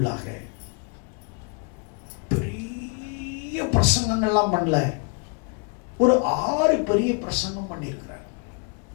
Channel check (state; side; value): quieter; right; 35.9 dB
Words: பெரிய பிரசங்கங்கள்லாம் பண்ணல, ஒரு 6 பெரிய பிரசங்கம் பண்ணியிருக்கிறார்.